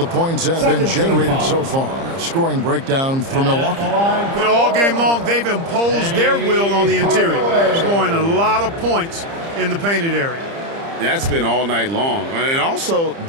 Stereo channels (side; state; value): left; late; 30 ms